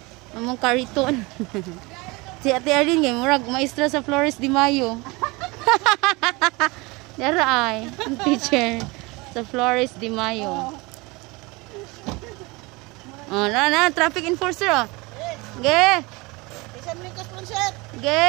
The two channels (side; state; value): left; quieter; 24.8 dB